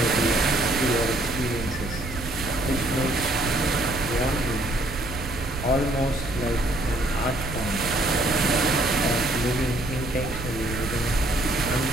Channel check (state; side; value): noise; right; rumble, 9 dB below the sound